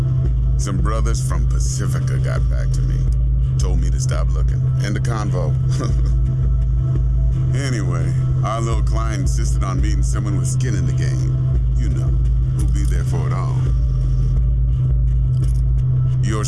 Some brothers from Pacifica got back to me. Told me to stop looking. End of convo. Anyway, our little client insisted on meeting someone with skin in the game. You know, who'll be there for it all.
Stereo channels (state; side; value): identical; both; correlation 1.00